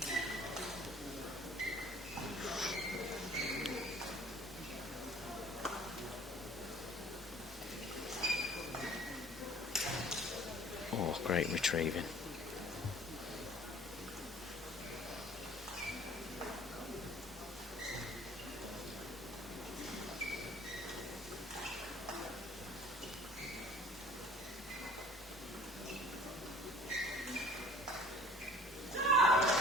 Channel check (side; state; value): both; normal; correlation 0.50